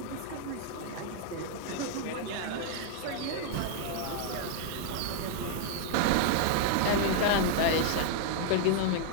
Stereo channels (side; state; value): both; different; correlation -0.01